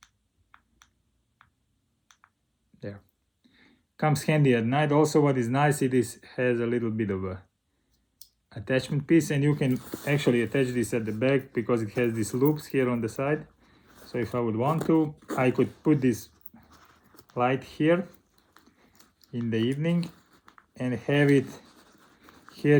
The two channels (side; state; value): both; identical; correlation 1.00